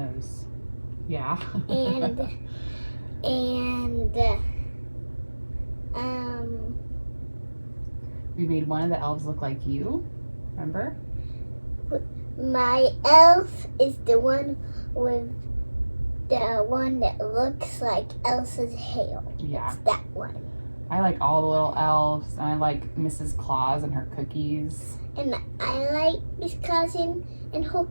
Yeah. and we made one of the elves look like you, remember? my elf is the one with the one that looks like Elsa's hair. Yeah. It's that one. I like all the little elves, and I like Mrs. Claus and her cookies. And I like Miss Cousin and her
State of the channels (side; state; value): both; inverted; correlation -1.00